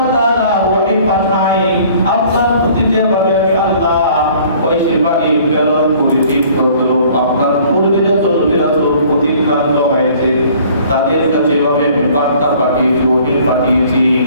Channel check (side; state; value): both; inverted; correlation -0.54